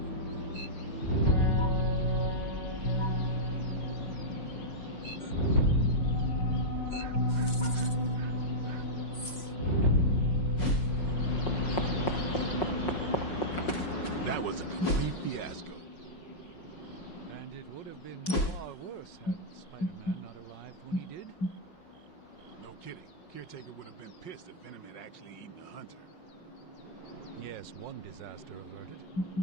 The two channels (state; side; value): late; right; 5.5 ms